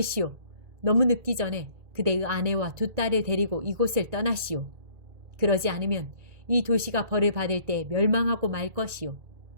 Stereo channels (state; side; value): late; left; 1.9 ms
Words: 너무 늦기 전에 그대의 아내와 두 딸을 데리고 이곳을 떠나시오. 그러지 않으면 이 도시가 벌을 받을 때 멸망하고 말 것이오.